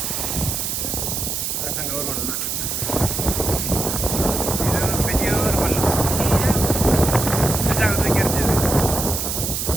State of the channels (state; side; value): noise; right; hiss, 2 dB below the sound